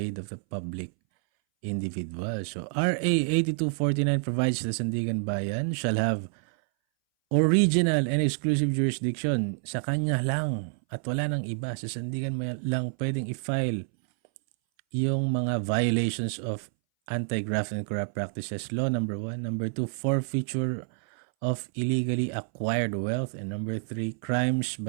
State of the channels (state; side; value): silent; left; 59 dB below the other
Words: of the public individual. So RA 8249 provides the Sandigan Bayan shall have original and exclusive jurisdiction. Sa kanya lang at wala nang iba. Sa Sandigan Bayan lang pwedeng i-file yung mga violations of anti-graft and corrupt practices law, number 1. Number 2, forfeiture of illegally acquired wealth. And number 3, crimes